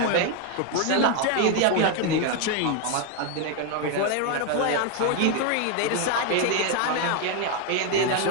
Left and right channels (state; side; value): different; both; correlation 0.01